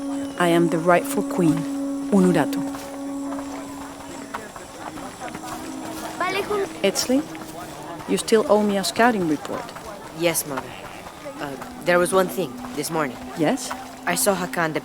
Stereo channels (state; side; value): identical; both; correlation 1.00